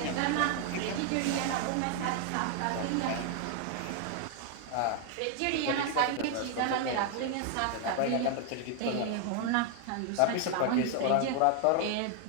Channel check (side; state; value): both; different; correlation 0.00